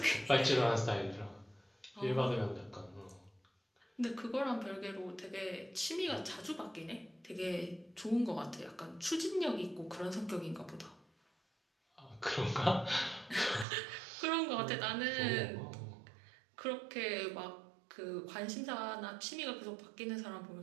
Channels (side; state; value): left; drops out; at 13.7 s